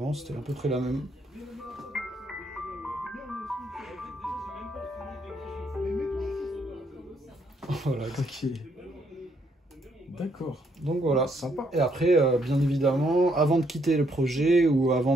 C'était à peu près la même. Voilà. Ok. D'accord. Donc voilà, sympa. Et après, bien évidemment, avant de quitter le projet ou avant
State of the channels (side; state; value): both; normal; correlation 0.72